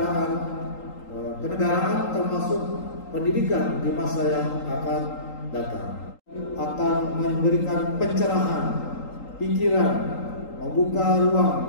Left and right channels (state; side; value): late; right; 3.8 ms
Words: kenegaraan termasuk pendidikan di masa yang akan datang. Akan memberikan pencerahan pikiran, membuka